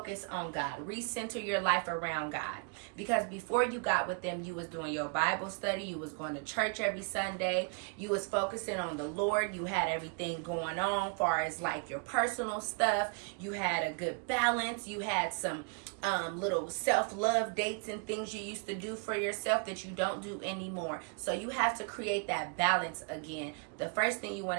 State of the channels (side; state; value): left; quieter; 38.9 dB